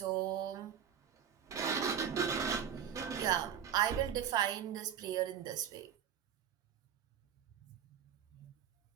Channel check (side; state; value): left; quieter; 8.7 dB